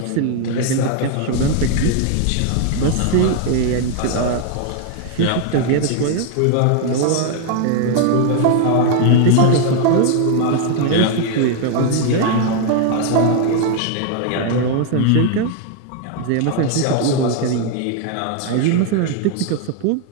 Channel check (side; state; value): both; different; correlation 0.00